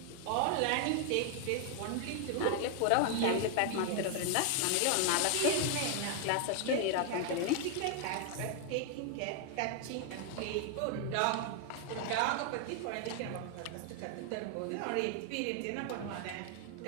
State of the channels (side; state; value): both; different; correlation 0.00